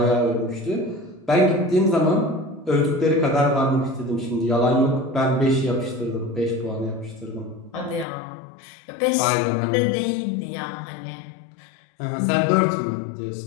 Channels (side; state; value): right; drops out; at 8.1 s